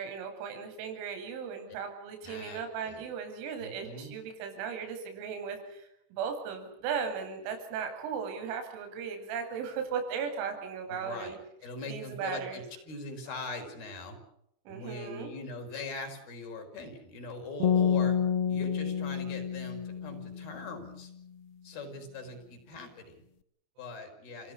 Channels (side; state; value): left; late; 31 ms